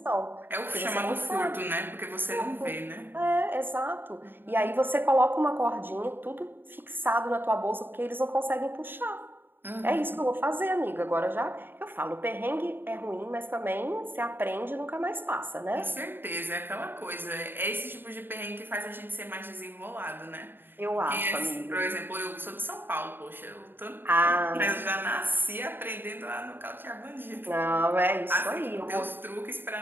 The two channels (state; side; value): late; left; 0.097 ms